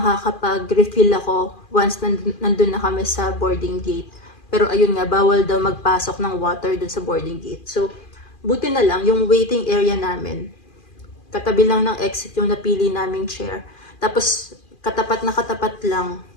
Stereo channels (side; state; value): right; late; 2.4 ms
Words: ako once nandun na kami sa boarding gate. Pero ayun nga, bawal daw magpasok ng water dun sa boarding gate. So, buti na lang, yung waiting area namin, katabi lang ng exit yung napili naming chair. Tapos, katapat na katapat lang,